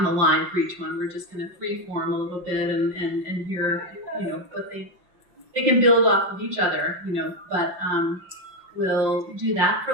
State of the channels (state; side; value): late; left; 5.5 ms